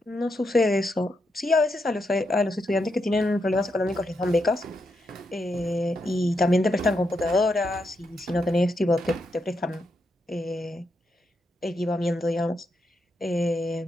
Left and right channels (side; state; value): both; normal; correlation 0.82